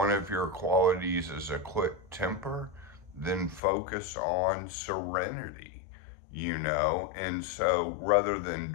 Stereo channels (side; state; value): right; drops out; at 3.6 s